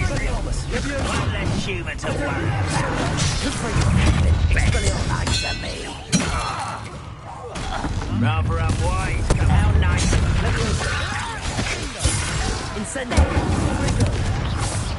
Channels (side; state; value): both; identical; correlation 1.00